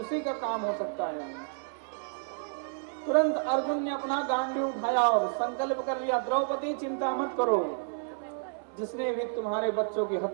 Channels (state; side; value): silent; left; 58 dB below the other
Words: का काम हो सकता है। तुरंत अर्जुन ने अपना गांडी उठाया और संकल्प कर लिया, द्रौपदी चिंता मत करो, जिसने भी तुम्हारे बच्चों की